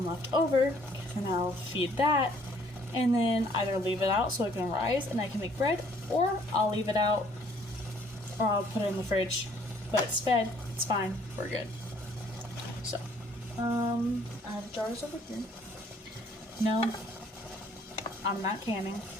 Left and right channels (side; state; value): both; normal; correlation 0.61